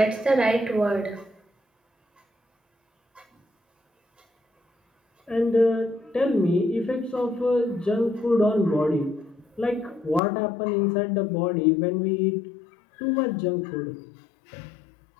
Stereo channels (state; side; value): drops out; right; at 10.2 s